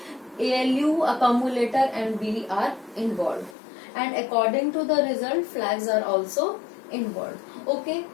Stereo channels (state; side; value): drops out; right; at 3.6 s